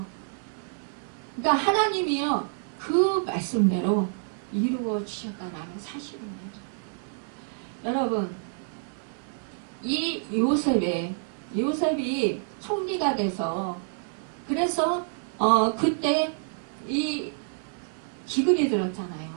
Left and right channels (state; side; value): silent; left; 59 dB below the other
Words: 그러니까 하나님이요 그 말씀대로 이루어 주셨다는 사실입니다. 여러분, 이 요셉이 총리가 돼서, 그래서 그때 이 기근이 들었잖아요.